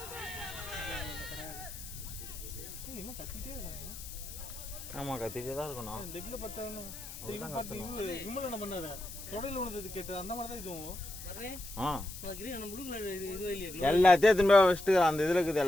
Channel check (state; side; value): noise; left; hiss, 12 dB below the sound